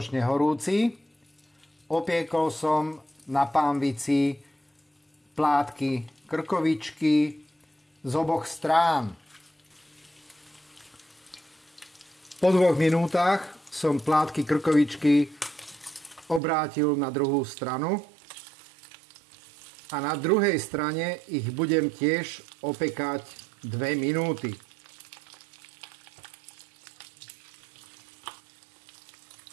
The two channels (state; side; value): drops out; left; at 16.4 s